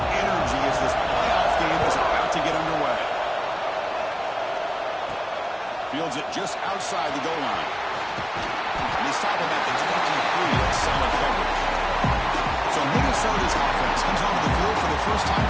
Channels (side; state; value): both; identical; correlation 1.00